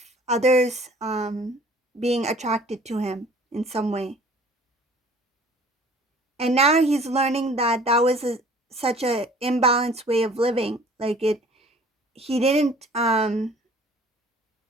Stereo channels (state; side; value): normal; both; correlation 0.51